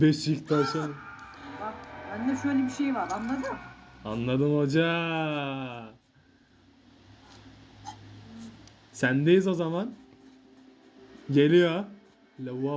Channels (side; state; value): both; identical; correlation 1.00